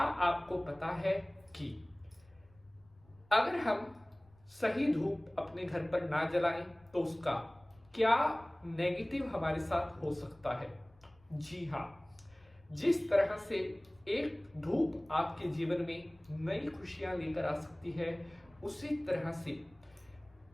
पता है कि अगर हम सही धूप अपने घर पर ना जलाएं तो उसका क्या नेगेटिव हमारे साथ हो सकता है? जी हाँ, जिस तरह से एक धूप आपके जीवन में नई खुशियां लेकर आ सकती है, उसी तरह से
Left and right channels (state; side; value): noise; left; rumble, 29 dB below the sound